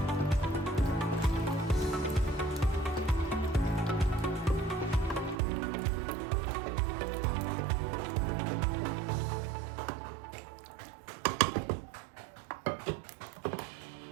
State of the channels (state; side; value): drops out; left; at 5.4 s